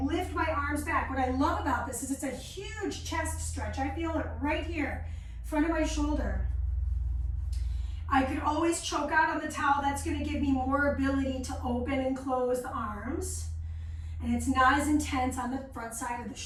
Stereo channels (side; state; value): both; identical; correlation 1.00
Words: lift my arms back. What I love about this is it's a huge chest stretch. I feel it right here, front of my shoulder. I could always choke out on the towel. That's going to give me more ability to open and close the arms. And it's not as intense on the front side of the